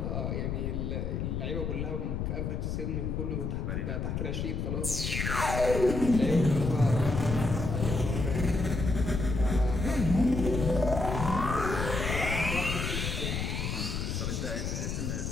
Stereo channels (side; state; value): left; noise; rumble, 2 dB below the sound